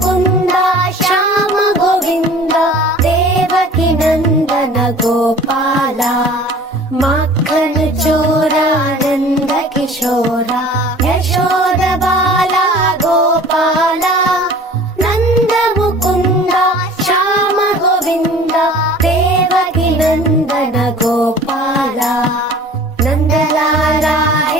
ಶ್ಯಾಮ ಗೋವಿಂದ ದೇವಕಿ ನಂದನ ಗೋಪಾಲ ಮಕ್ಕನ ಚೋರ ನಂದ ಕಿಶೋರ ಯಶೋದ ಬಾಲ ಗೋಪಾಲ ನಂದ ಮುಕುಂದ ಶ್ಯಾಮ ಗೋವಿಂದ ದೇವಕಿ ನಂದನ ಗೋಪಾಲ ನಂದಲಾಲ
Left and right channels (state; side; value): normal; both; correlation 0.46